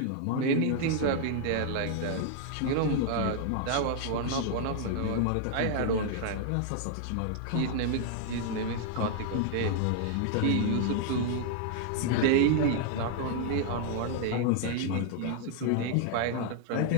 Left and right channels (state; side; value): different; both; correlation 0.00